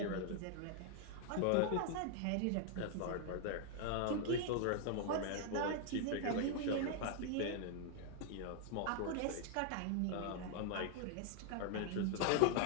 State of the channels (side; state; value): both; different; correlation -0.01